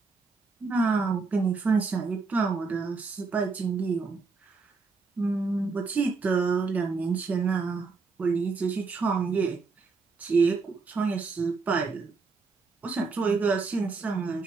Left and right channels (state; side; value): quieter; left; 4.4 dB